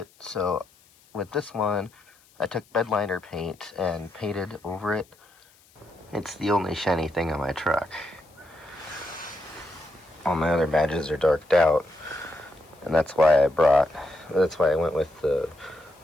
So with this one, I took bed liner paint and painted over it. It's the only shiny thing on my truck. All my other badges are darked out, and that's why I went with the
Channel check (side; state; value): left; noise; hiss, 30 dB below the sound